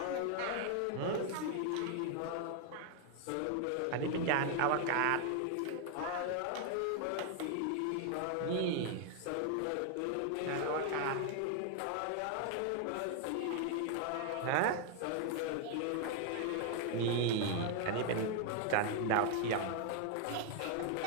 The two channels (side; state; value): both; different; correlation 0.00